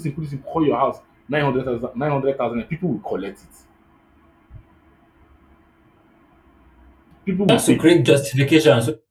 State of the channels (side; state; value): both; identical; correlation 1.00